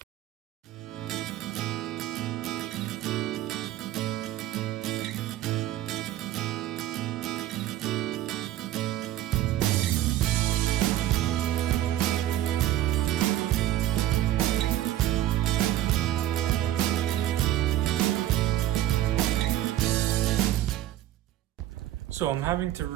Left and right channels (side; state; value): left; quieter; 13.3 dB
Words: So I'm having to